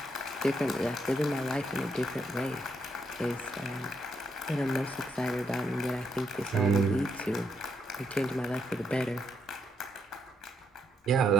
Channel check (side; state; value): both; normal; correlation 0.77